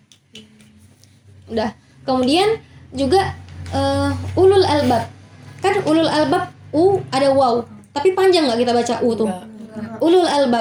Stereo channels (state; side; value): identical; both; correlation 1.00